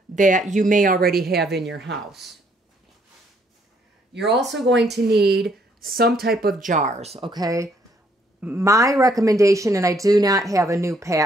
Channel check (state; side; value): normal; both; correlation 0.68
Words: that you may already have in your house. You're also going to need some type of jars, okay? My recommendation, and I do not have a new